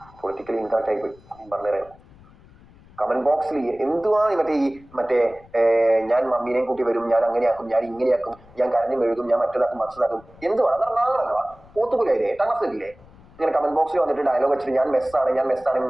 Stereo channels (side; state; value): left; noise; rumble, 25 dB below the sound